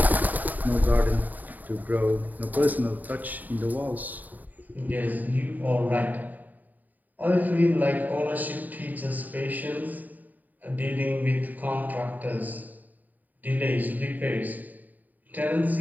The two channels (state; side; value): late; left; 0.083 ms